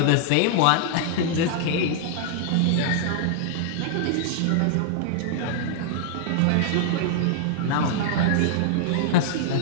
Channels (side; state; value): both; different; correlation -0.01